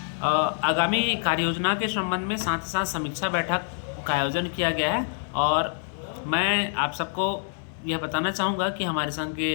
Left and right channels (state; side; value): silent; right; digital silence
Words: आगामी कार्ययोजना के संबंध में साथ ही साथ समीक्षा बैठक का आयोजन किया गया है। और मैं आप सबको यह बताना चाहूँगा कि हमारे संघ के